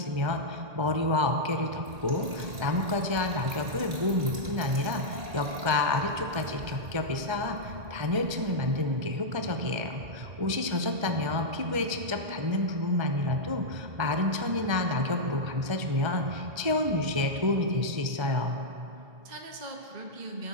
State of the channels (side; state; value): left; late; 1.3 ms